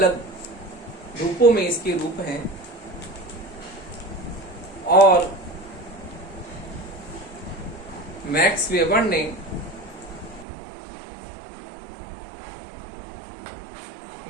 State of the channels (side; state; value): left; drops out; at 10.5 s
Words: रूपों में इसके रूप हैं। और मैक्स वेबर ने